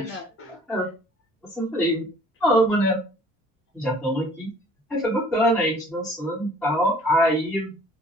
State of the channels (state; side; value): normal; both; correlation 0.54